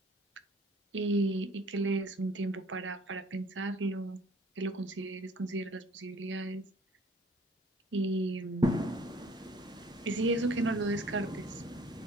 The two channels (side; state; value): both; normal; correlation 0.54